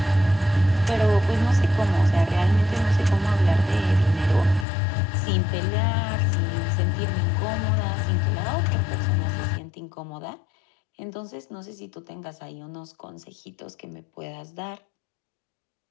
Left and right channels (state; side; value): drops out; right; at 4.7 s